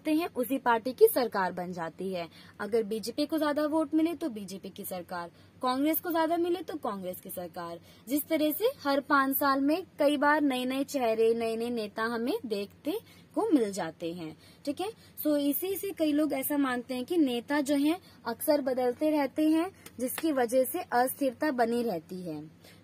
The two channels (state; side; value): identical; both; correlation 1.00